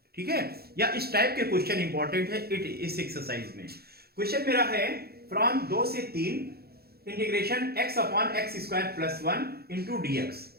ठीक है, या इस टाइप के क्वेश्चन इंपॉर्टेंट है इस एक्सरसाइज में. क्वेश्चन मेरा है फ्रॉम 2 से 3 integration x upon x square plus 1 into dx.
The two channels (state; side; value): late; left; 0.46 ms